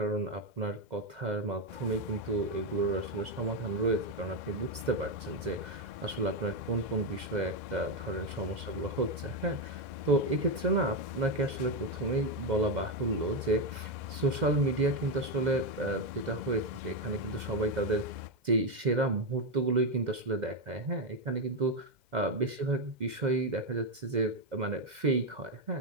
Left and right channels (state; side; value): late; left; 2.0 ms